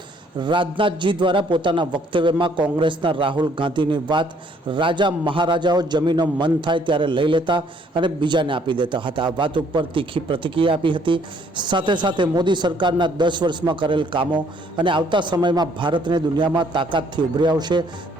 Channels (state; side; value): normal; both; correlation 0.63